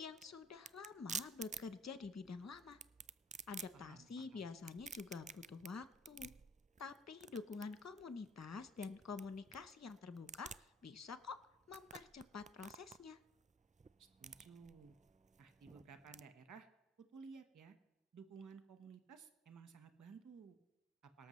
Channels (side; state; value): both; normal; correlation 0.54